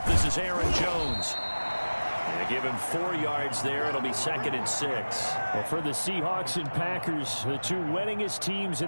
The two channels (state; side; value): inverted; both; correlation -1.00